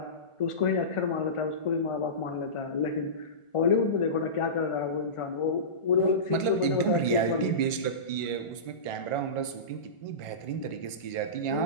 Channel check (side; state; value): right; late; 1.5 ms